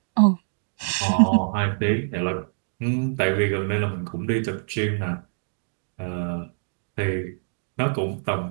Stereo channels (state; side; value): silent; left; digital silence